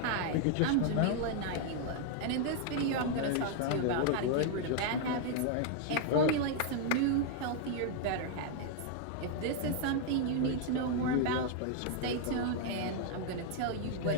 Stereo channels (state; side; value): different; both; correlation 0.00